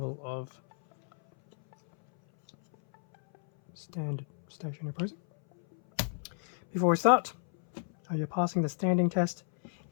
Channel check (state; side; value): silent; right; 57 dB below the other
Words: of standard stationary posing. Before we start, are you passing the standing test?